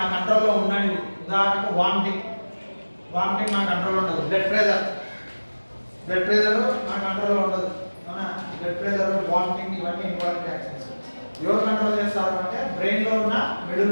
కంట్రోల్లో ఉన్నది. ఉదాహరణకు వామిటింగ్ మన కంట్రోల్లో ఉండదు. బ్లడ్ ప్రెషర్ మన కంట్రోల్లో ఉండదు. అవునా? బ్లడ్ ప్రెషర్, వామిటింగ్ ఇవన్నీ ఇన్వాలంటరీ యాక్షన్స్. ఎవరు కంట్రోల్ చేస్తారు అంటే బ్రెయిన్లో ఉన్న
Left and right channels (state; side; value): inverted; both; correlation -1.00